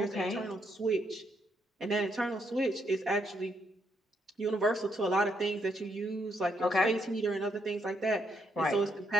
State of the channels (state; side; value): normal; both; correlation 0.76